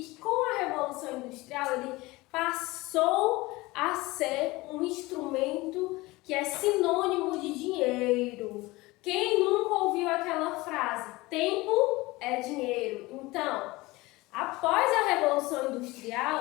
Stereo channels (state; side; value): quieter; right; 21.1 dB